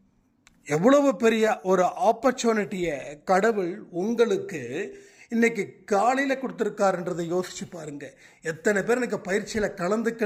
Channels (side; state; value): both; identical; correlation 1.00